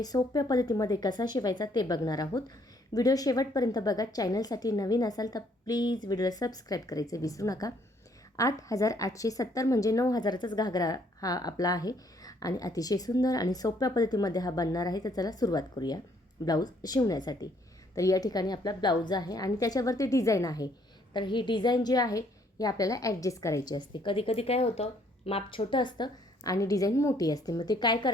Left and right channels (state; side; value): normal; both; correlation 0.66